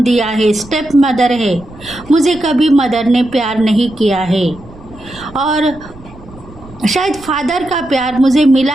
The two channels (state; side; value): noise; right; rumble, 20 dB below the sound